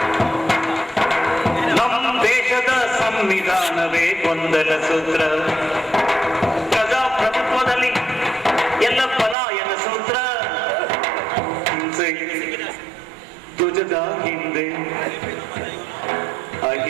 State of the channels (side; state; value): left; drops out; at 9.3 s